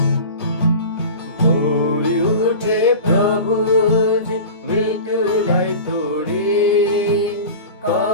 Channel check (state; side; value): inverted; both; correlation -0.34